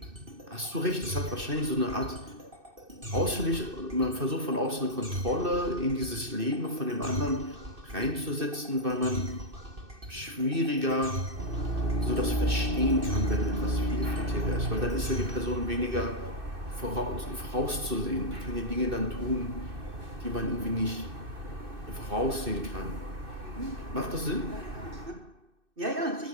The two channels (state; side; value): late; left; 2.6 ms